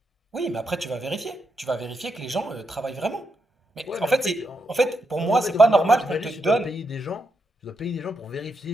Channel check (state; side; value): normal; both; correlation 0.82